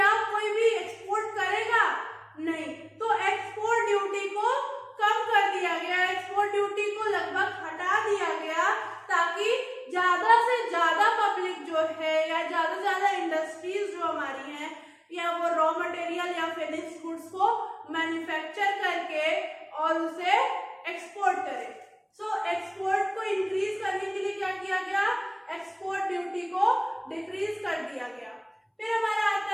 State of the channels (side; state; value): both; identical; correlation 1.00